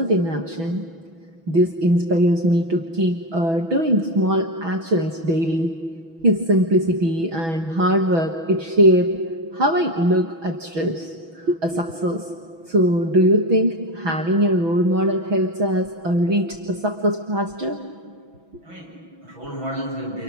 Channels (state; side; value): late; left; 6.1 ms